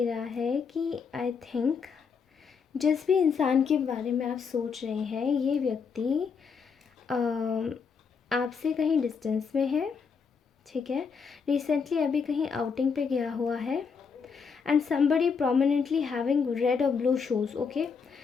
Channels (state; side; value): quieter; right; 5.8 dB